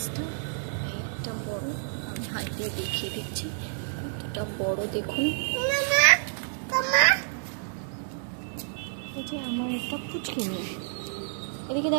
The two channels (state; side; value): silent; left; 59 dB below the other